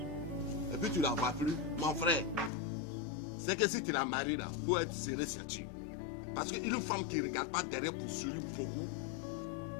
et puis tu ne la vois plus, mon frère, c'est que si tu la maries là, il faut être serré ceinture. Parce qu'une femme qui ne regarde pas derrière pour sourire beaucoup,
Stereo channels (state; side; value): drops out; right; at 2.5 s